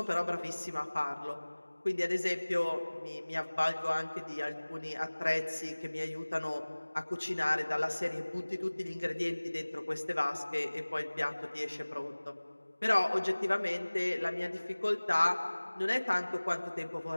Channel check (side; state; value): both; inverted; correlation -1.00